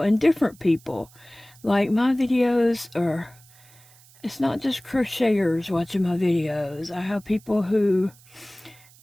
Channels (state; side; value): noise; right; hiss, 26 dB below the sound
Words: and different people. Like, my videos are, it's not just crocheters watching my videos. I have people who